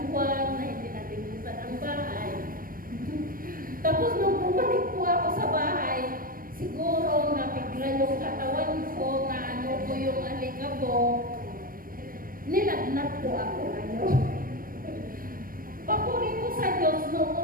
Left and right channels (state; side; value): late; left; 0.41 ms